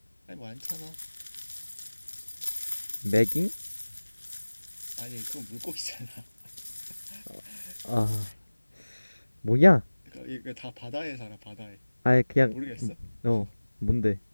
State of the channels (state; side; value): inverted; both; correlation -1.00